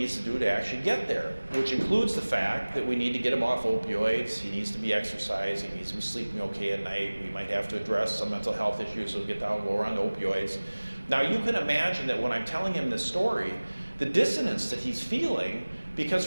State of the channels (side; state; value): both; inverted; correlation -1.00